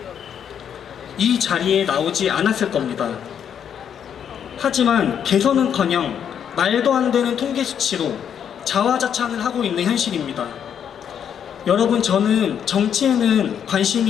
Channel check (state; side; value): quieter; right; 8.5 dB